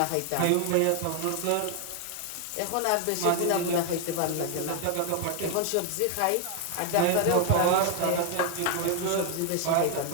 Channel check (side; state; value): both; different; correlation 0.00